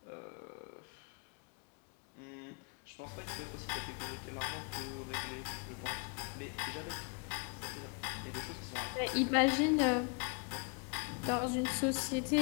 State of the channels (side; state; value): right; quieter; 34.3 dB